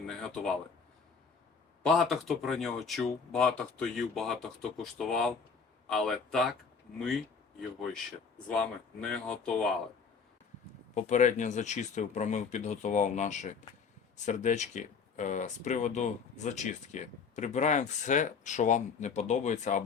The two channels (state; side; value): quieter; right; 5.6 dB